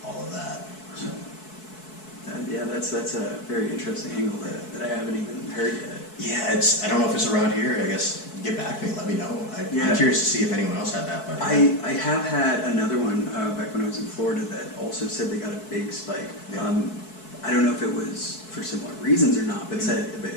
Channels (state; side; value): late; right; 4.6 ms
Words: all of that. So. That's a very interesting angle that I haven't even heard yet. Yeah, I don't know if it's around here. I guess get back to me, let me know. I'm curious to see if anyone else had that. But I have had another one back when I was in Florida that also said they got a big spike. Yeah. I don't know if it was for similar reasons or not, but